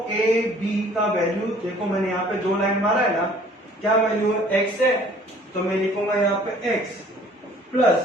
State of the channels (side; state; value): both; normal; correlation 0.54